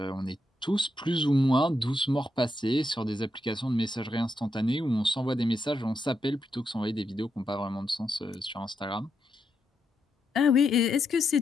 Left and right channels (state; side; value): normal; both; correlation 0.82